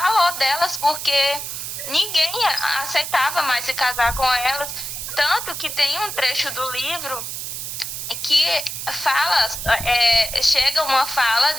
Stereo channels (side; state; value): right; noise; hiss, 6 dB below the sound